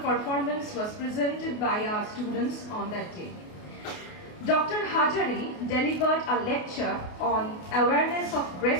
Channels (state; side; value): late; right; 28 ms